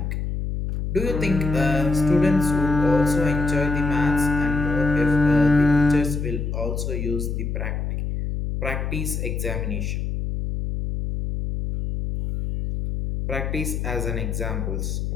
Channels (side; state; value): left; noise; hum, 3 dB below the sound